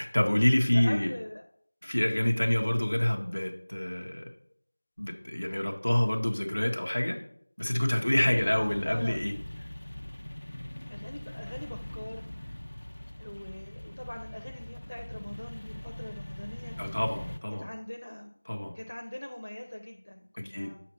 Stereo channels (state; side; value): inverted; both; correlation -1.00